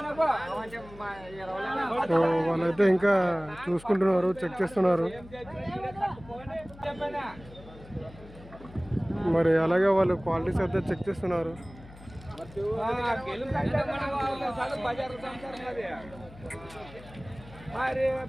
సో వాళ్ళైతే ఇంకా చూసుకుంటున్నారు, చెక్ చేస్తున్నారు. మరి అలాగే వాళ్ళు క్వాలిటీస్ అయితే చెక్ చేస్తున్నారు.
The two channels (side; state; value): left; noise; hum, 19 dB below the sound